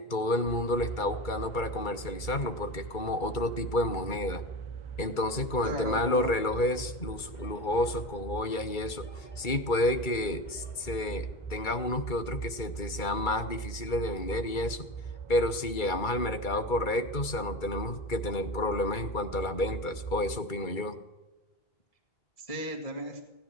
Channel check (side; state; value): right; late; 2.3 ms